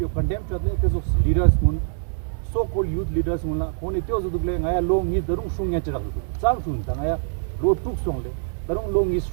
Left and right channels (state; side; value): silent; left; digital silence